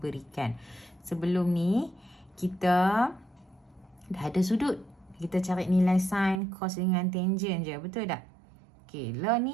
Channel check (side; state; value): left; drops out; at 6.4 s